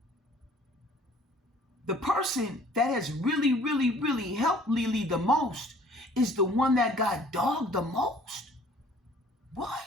the person that has really, really, really helped Leelee the most is the one that got dogged the most. What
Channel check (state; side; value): normal; both; correlation 0.54